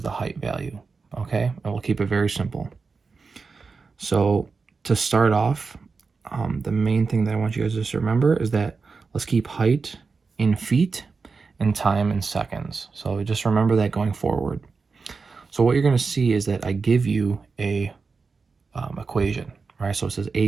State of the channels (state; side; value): quieter; left; 4.6 dB